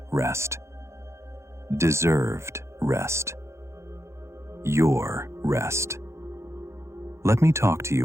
rest. Deserved rest. Your rest. Let me talk to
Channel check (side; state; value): left; late; 0.13 ms